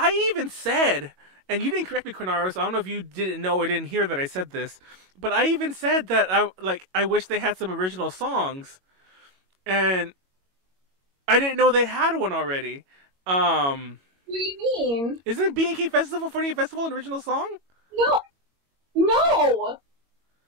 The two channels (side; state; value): left; late; 22 ms